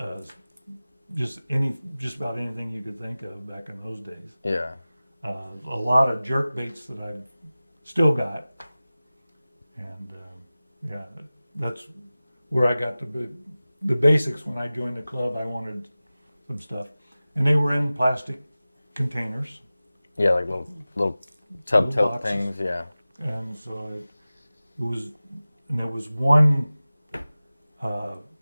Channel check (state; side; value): inverted; both; correlation -0.97